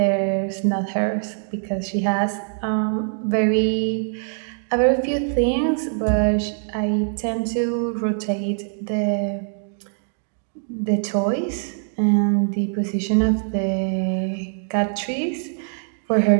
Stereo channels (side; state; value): left; silent; 64 dB below the other